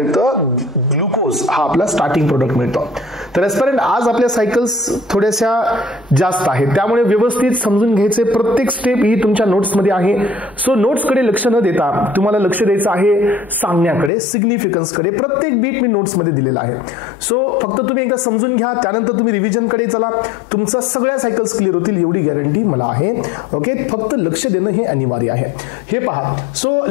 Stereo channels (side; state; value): right; drops out; at 14.1 s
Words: ग्लुकोज, हा आपला स्टार्टिंग प्रोडक्ट मिळतो. तर एस्पिरंट आज आपल्या सायकल्स थोड्याशा जास्त आहेत, त्यामुळे व्यवस्थित समजून घ्यायचे. प्रत्येक स्टेप ही तुमच्या नोट्समध्ये आहे. सो नोट्सकडे लक्ष न देता तुम्हाला लक्ष द्यायचं आहे सांगण्याकडे, सिग्निफिकन्सकडे. प्रत्येक बीट मी नोट्समध्ये दिलेला आहे. सो फक्त तुम्ही एकदा समजून घ्या, त्यानंतर तुम्ही रिव्हिजनकडे चला. तुमच्या सगळ्या सायकल्स क्लिअर होतील एवढी गॅरंटी मला आहे. ओके, फक्त लक्ष देणं हे अनिवार्य आहे. हे पहा, सो